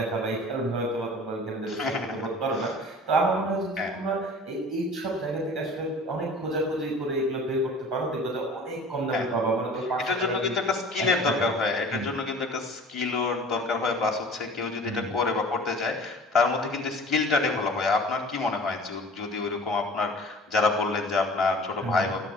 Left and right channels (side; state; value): both; normal; correlation 0.43